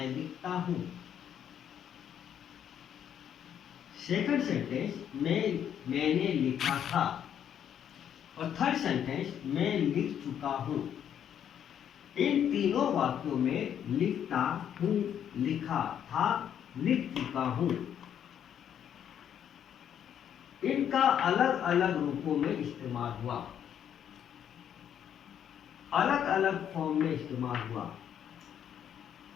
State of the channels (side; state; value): right; quieter; 9.3 dB